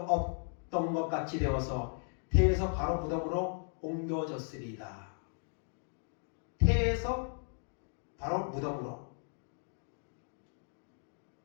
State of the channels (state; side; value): silent; right; 54 dB below the other